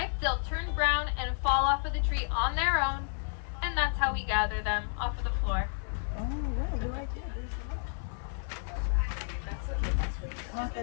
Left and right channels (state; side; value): silent; right; 57 dB below the other